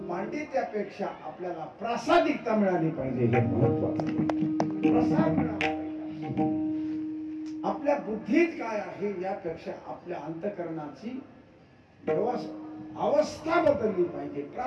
पांडित्यापेक्षा आपल्याला प्रासादिकता मिळाली पाहिजे, हे महत्वाचं. प्रसाद मिळाला पाहिजे. आपल्या बुद्धीत काय आहे यापेक्षा आपल्या अंतःकरणाची अवस्था बदलली पाहिजे.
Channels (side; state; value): both; identical; correlation 1.00